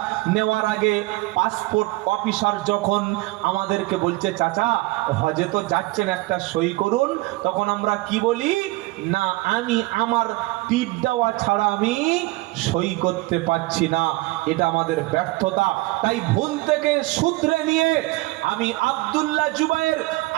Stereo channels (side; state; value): left; quieter; 21.7 dB